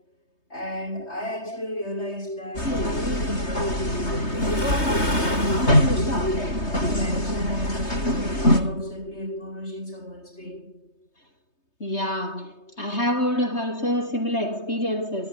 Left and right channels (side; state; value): right; late; 3.2 ms